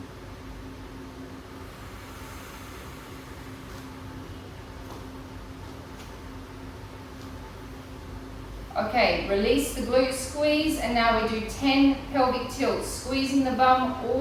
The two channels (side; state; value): both; identical; correlation 1.00